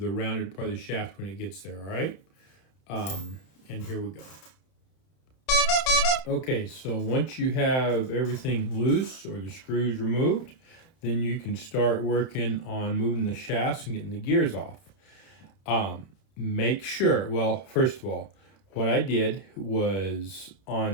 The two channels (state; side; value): late; right; 31 ms